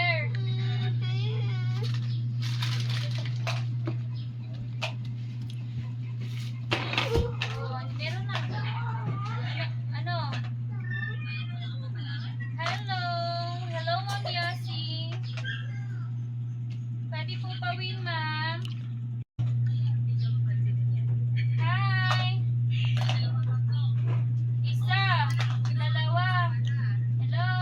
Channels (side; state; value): both; identical; correlation 1.00